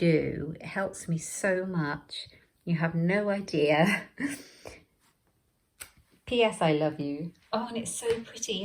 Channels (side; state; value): both; identical; correlation 1.00